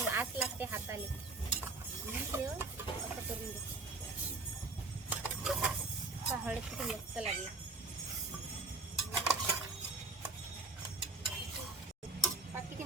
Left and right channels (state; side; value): quieter; left; 3.5 dB